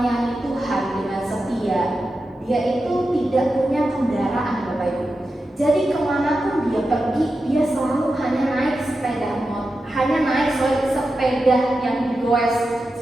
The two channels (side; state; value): both; normal; correlation 0.91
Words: Tuhan dengan setia, dia itu tidak punya kendaraan, Bapak Ibu. Jadi kemanapun dia pergi, dia selalu hanya naik sepeda yang digoes,